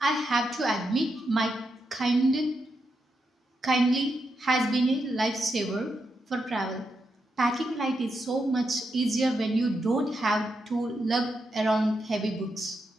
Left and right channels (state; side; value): normal; both; correlation 0.84